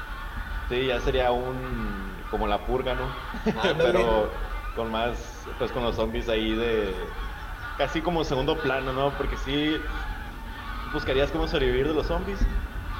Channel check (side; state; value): both; identical; correlation 1.00